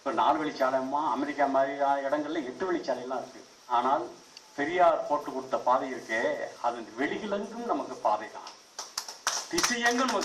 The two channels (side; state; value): both; identical; correlation 1.00